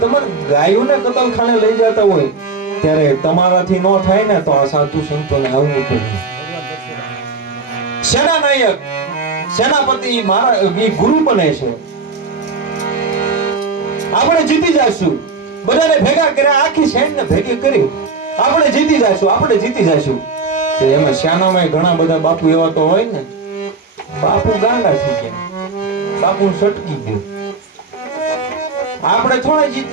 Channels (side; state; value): left; quieter; 4.4 dB